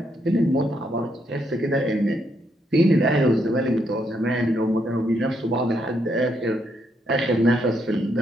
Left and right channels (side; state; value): both; normal; correlation 0.76